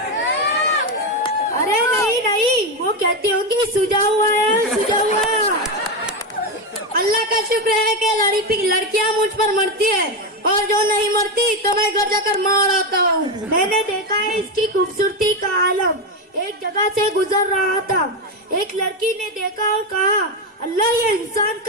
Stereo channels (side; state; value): both; normal; correlation 0.11